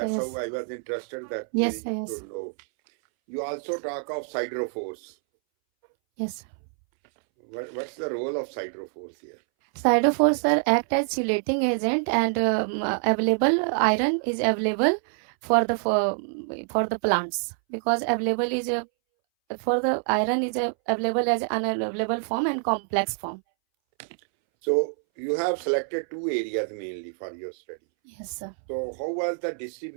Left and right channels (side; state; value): left; silent; 61 dB below the other